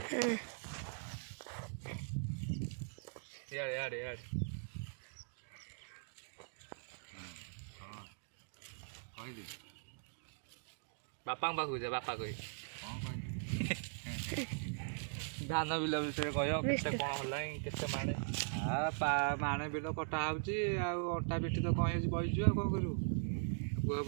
बापा पाखु जा बापा कह धान बिल विषय कह कौन माणे माणे बिल कटा होटा पिठी तो कहीं बहीचु कौन करू बुह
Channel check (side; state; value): left; silent; digital silence